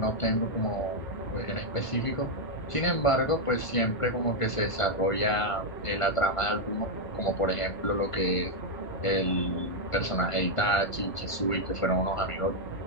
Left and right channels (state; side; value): late; right; 1.5 ms